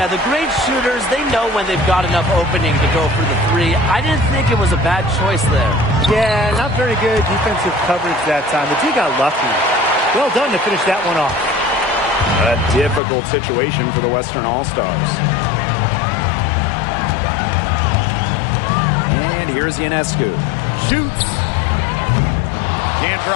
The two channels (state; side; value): drops out; right; at 13.0 s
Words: the great shooters, they know when they've got enough opening to go for the three. I didn't think it was a bad choice there. Yeah, not very good defensive coverage that time. The team got lucky. Well done to finish that one off. A difficult situation for the Western All-Stars. And here's Ionescu. Shoots. Can't